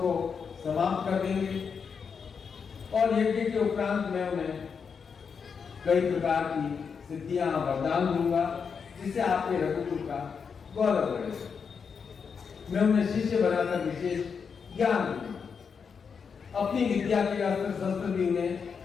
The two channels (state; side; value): quieter; right; 6.1 dB